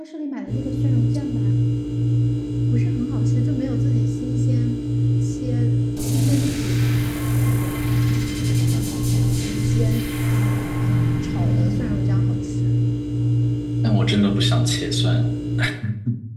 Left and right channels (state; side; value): identical; both; correlation 1.00